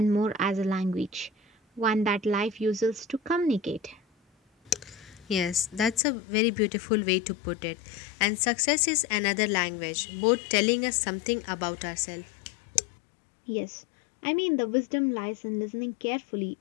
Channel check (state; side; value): drops out; right; at 6.0 s